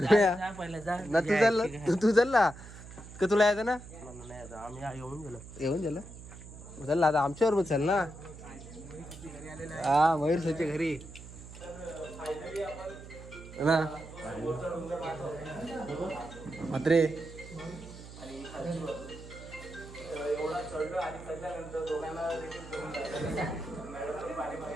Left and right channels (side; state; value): right; noise; hum, 15 dB below the sound